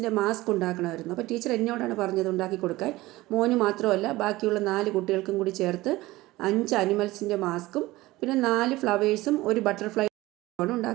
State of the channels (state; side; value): quieter; left; 18.7 dB